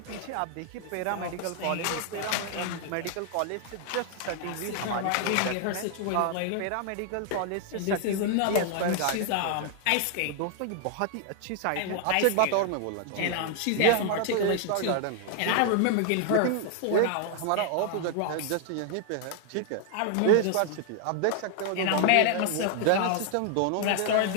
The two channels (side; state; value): both; different; correlation 0.00